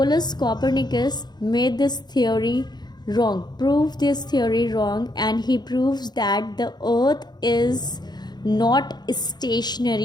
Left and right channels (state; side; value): late; right; 0.20 ms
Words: Copernicus made this theory wrong, proved this theory wrong, and he proves that the earth is not